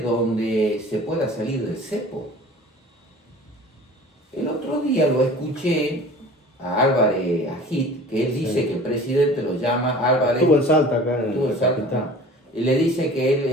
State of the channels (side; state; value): both; normal; correlation 0.44